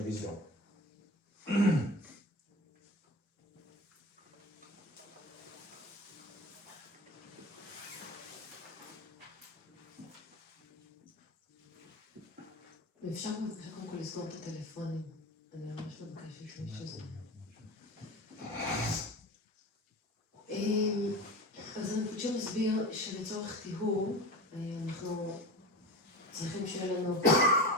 wisdom. ואפשר בבקשה קודם כל לסגור את הטלפונים. אני ממש מבקשת שזה. אז רינפוצ'ה מסביר שלצורך טיהור אנחנו צריכים שיהיה לנו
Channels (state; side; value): normal; both; correlation 0.29